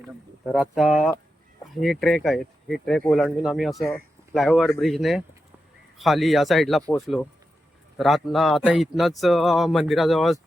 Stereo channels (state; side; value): normal; both; correlation 0.89